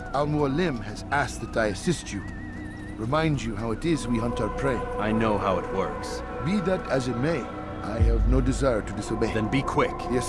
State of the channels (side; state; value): both; identical; correlation 1.00